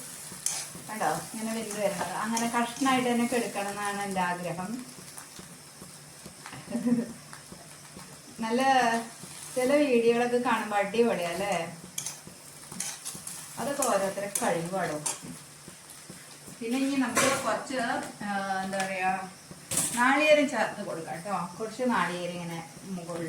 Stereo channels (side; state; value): both; identical; correlation 1.00